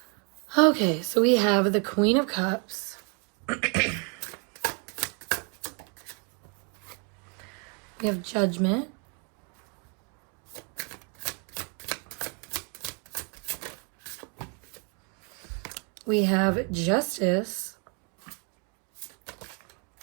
Okay, so we have the Queen of Cups. We have Judgment. We have Justice.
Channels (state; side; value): quieter; left; 35.0 dB